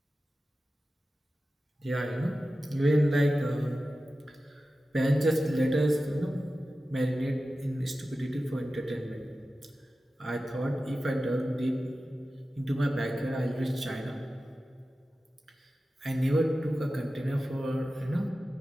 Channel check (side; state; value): both; normal; correlation 0.94